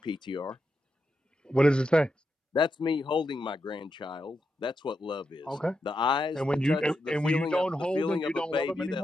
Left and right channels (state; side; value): normal; both; correlation 0.85